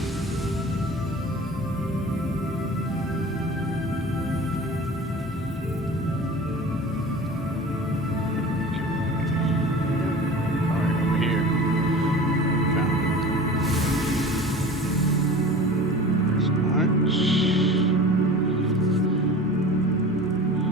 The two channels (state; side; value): normal; both; correlation 0.38